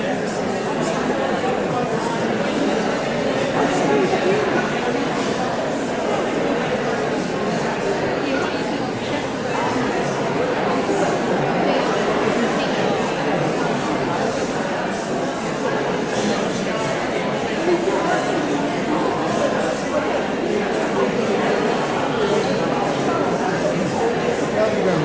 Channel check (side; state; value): left; noise; hum, 29 dB below the sound